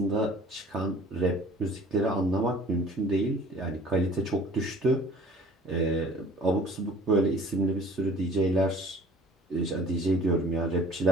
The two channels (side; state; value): both; normal; correlation 0.49